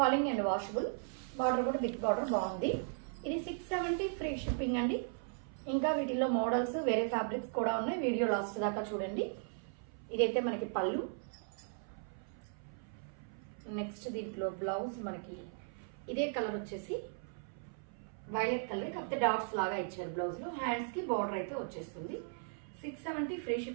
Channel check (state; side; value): silent; left; 53 dB below the other